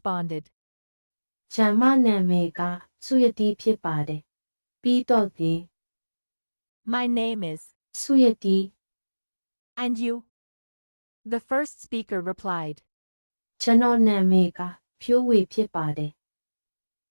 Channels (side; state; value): both; inverted; correlation -1.00